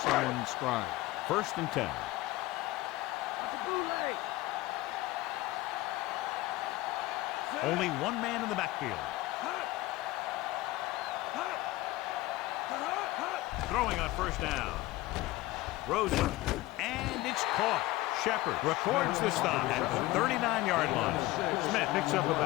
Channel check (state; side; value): quieter; right; 18.2 dB